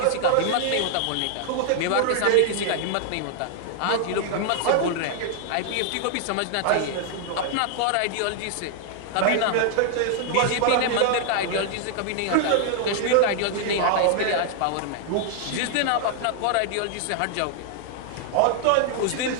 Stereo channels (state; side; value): different; both; correlation 0.00